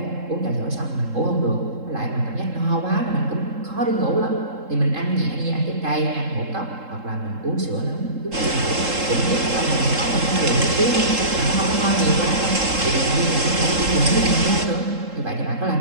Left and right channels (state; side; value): late; left; 3.7 ms